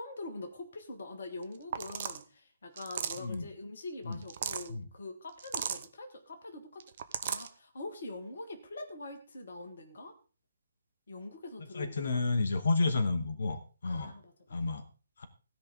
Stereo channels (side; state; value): both; inverted; correlation -0.81